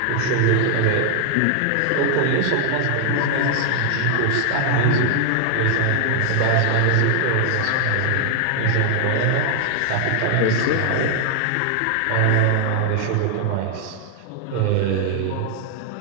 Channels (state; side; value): different; both; correlation 0.00